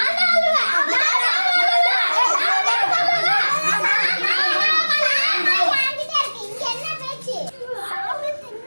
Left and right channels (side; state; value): both; inverted; correlation -1.00